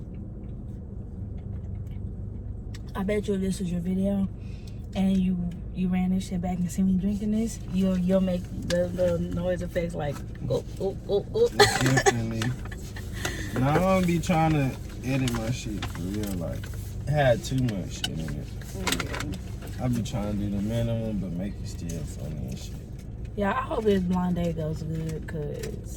I bet you if this was your video and you ran this shit back and see me drinking this, you'll make the noise effects like go. Definitely. Now I don't be trying to edit my shit for real. Like, it had too much shit in it. I be trying to do the minimum, but make it still funny and shit. Yeah, I hope this blind date goes good,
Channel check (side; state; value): both; identical; correlation 1.00